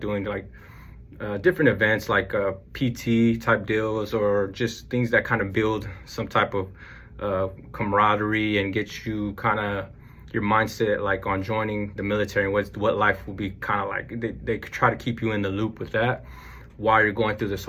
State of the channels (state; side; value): identical; both; correlation 1.00